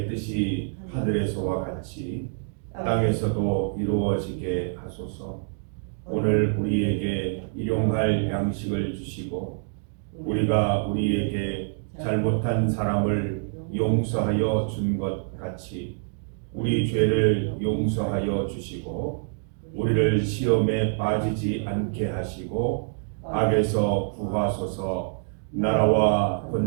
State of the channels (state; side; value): silent; left; 61 dB below the other